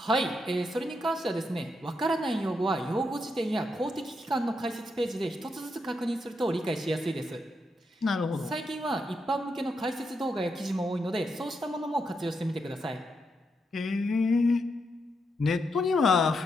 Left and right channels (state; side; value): normal; both; correlation 0.82